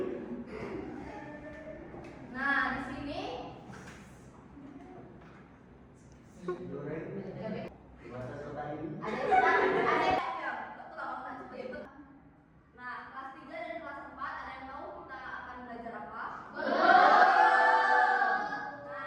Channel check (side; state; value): both; identical; correlation 1.00